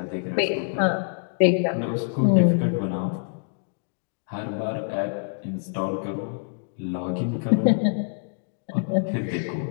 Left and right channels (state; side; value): silent; right; digital silence